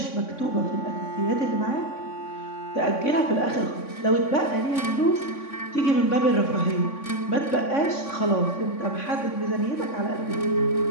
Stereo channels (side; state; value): right; late; 3.5 ms